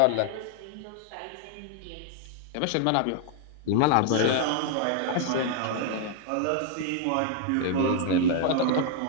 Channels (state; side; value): different; both; correlation 0.00